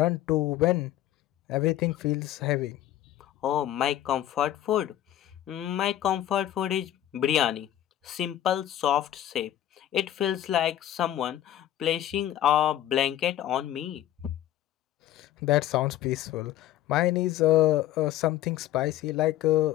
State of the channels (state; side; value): quieter; right; 12.8 dB